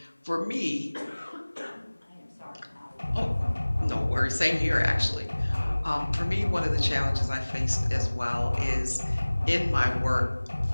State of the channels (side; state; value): both; inverted; correlation -1.00